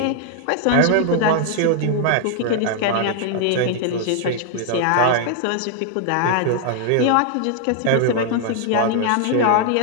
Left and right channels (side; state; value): both; different; correlation 0.00